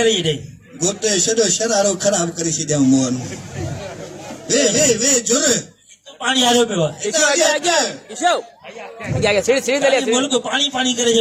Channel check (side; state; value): both; identical; correlation 1.00